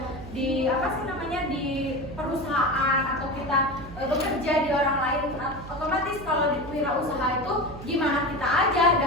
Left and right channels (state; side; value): noise; right; hum, 14 dB below the sound